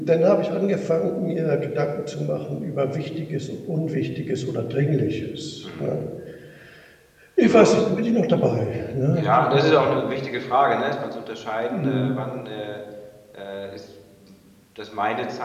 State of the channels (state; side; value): identical; both; correlation 1.00